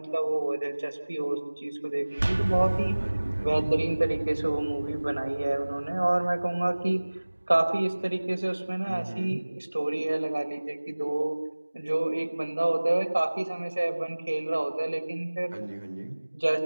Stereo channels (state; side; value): inverted; both; correlation -1.00